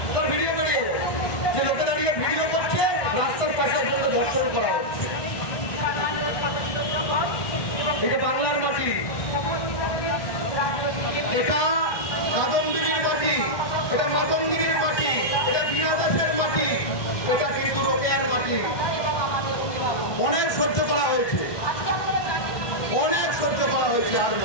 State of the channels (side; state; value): right; late; 1.2 ms